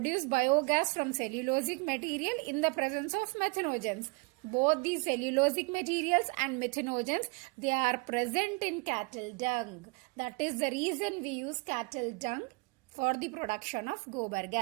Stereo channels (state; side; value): quieter; left; 28.0 dB